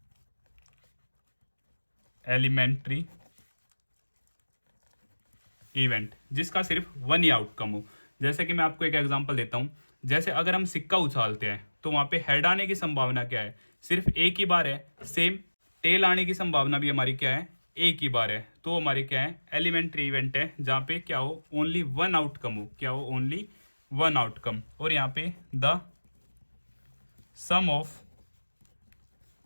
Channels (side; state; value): both; inverted; correlation -1.00